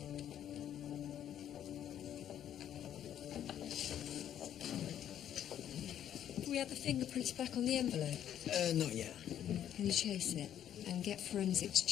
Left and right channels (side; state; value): right; quieter; 10.4 dB